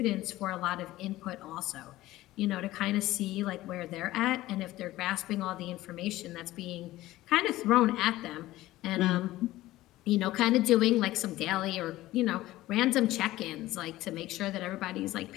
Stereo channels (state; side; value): quieter; right; 16.5 dB